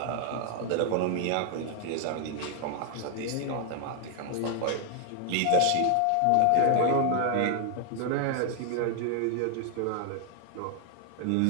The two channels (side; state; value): both; different; correlation 0.00